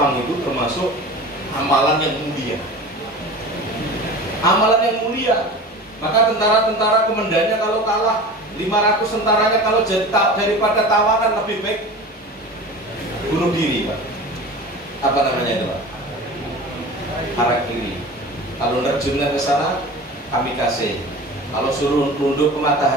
itu termasuk amalan yang mulia. Amalan yang mulia. Maka tentara-tentara komandannya kalau kalah, 500 tentaranya kalau jadi daripada tawanan lebih baik bunuh diri, Pak. Apa namanya itu, Pak? Harakiri. Kalau nerjunnya ke sana, kamikaze. Kalau suruh nunduk ke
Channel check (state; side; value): normal; both; correlation 0.35